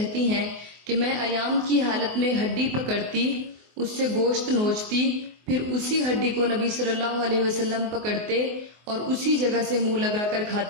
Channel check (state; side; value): late; left; 24 ms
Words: ہیں کہ میں ایام کی حالت میں ہڈی پکڑتی، اس سے گوشت نوچتی، پھر اسی ہڈی کو نبی صلی اللہ علیہ وسلم پکڑتے اور اسی جگہ سے منہ لگا کر